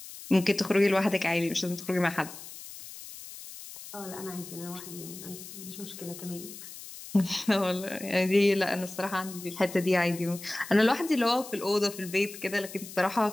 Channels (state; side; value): noise; left; hiss, 14 dB below the sound